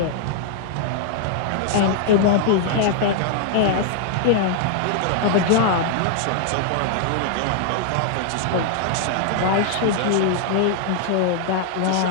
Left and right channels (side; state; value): both; different; correlation -0.01